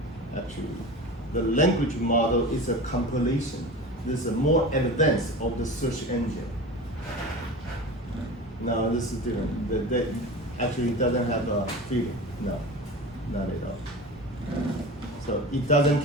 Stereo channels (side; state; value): both; normal; correlation 0.32